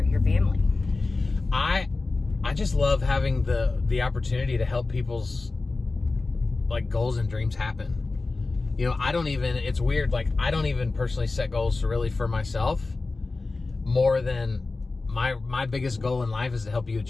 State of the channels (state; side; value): quieter; right; 3.6 dB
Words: family. I just love having the opportunity to help people's like goals and dreams happen. It's weird, like I don't even personally set goals really for myself, more than my biggest goal in life is to help you